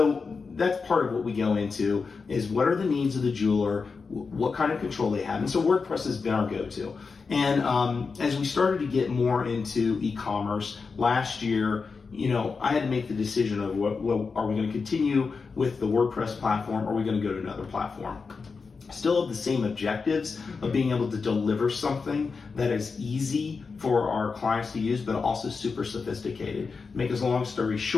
that's part of what we go into is what are the needs of the jeweler, what kind of control they have. And so WordPress has been our go-to. And as we started to get more into e-commerce last year, I had to make the decision of what are we going to continue with the WordPress platform, or are we going to go to another platform? Still have the same objectives of being able to deliver something that is easy for our clients to use, but also super sophisticated. Make a long story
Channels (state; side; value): quieter; right; 4.9 dB